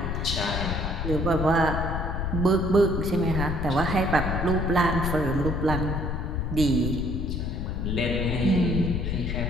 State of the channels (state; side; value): noise; left; rumble, 2 dB below the sound